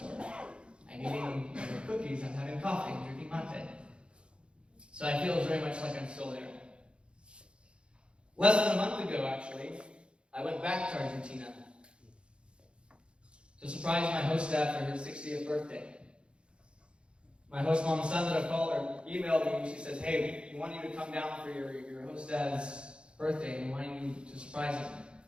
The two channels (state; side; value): late; left; 0.056 ms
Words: I'm eating cookies, I'm having coffee, I'm drinking mate. So I feel very much like I'm still there. Less than a month ago, actually, I went back to Argentina to surprise my host dad for his 60th birthday. My host mom, Sandra, emailed me, and she says, hey, we want you to come down for your host dad's birthday, and we want you to surprise him.